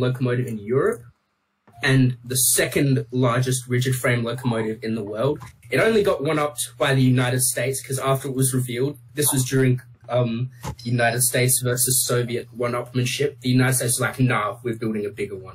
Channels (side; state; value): both; identical; correlation 1.00